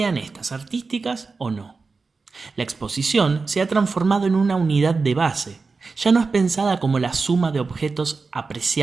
estas artísticas o no. La exposición se ha transformado en una unidad de base, ya no es pensada como la suma de objetos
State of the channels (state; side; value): quieter; left; 4.3 dB